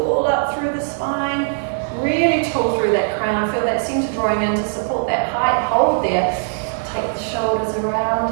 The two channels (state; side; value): silent; left; 59 dB below the other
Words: up through the spine, really tall through that crown, feel that center drawing in to support that height, hold there, take the shoulders around